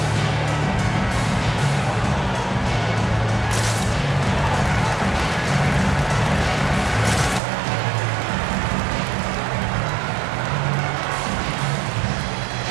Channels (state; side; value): drops out; left; at 7.4 s